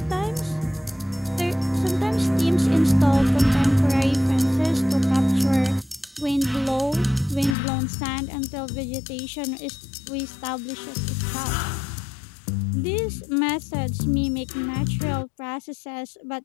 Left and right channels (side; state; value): right; drops out; at 7.6 s